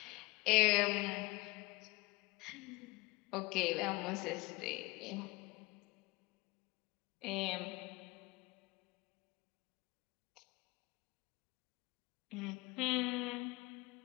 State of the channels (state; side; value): quieter; right; 23.0 dB